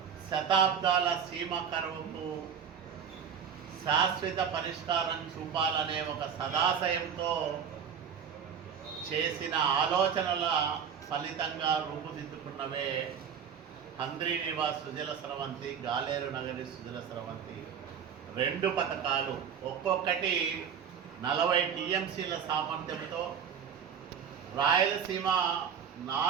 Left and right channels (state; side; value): quieter; left; 7.5 dB